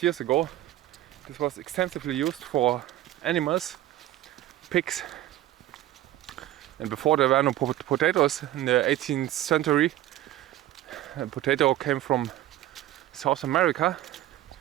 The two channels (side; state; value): left; quieter; 14.0 dB